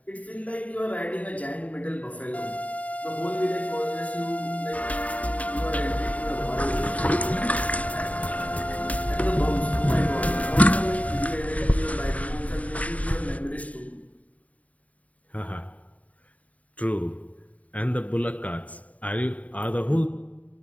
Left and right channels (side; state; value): right; late; 0.069 ms